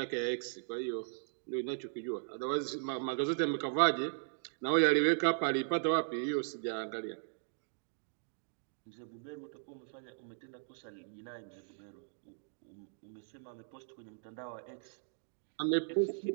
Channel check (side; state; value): left; silent; digital silence